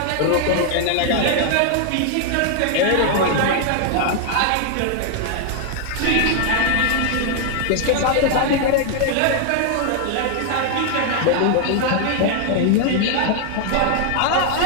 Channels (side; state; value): both; different; correlation 0.00